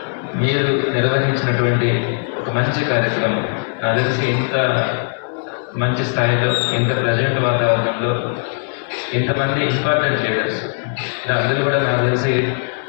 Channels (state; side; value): silent; right; 63 dB below the other